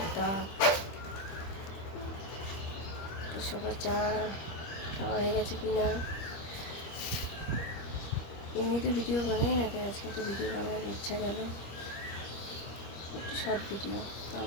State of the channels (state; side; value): late; right; 25 ms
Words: তাপ। তো সবার চা খাওয়া হয়ে গেছে কি না? এমনিতে ভিডিও বানাই না, তাই আজকে একটা ভিডিও বানানোর ইচ্ছা গেল, একটু শর্ট ভিডিও।